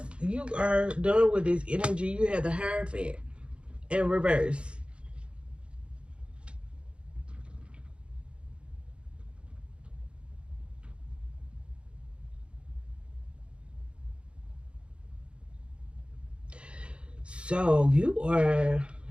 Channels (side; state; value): left; late; 0.058 ms